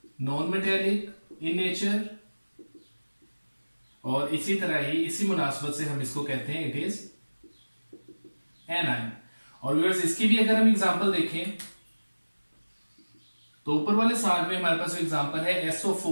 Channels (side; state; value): both; inverted; correlation -1.00